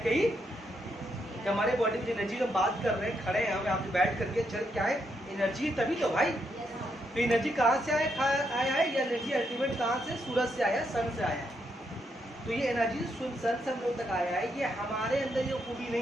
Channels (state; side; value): normal; both; correlation 0.79